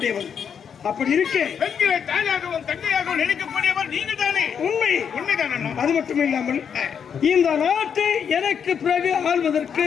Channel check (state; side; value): quieter; right; 7.4 dB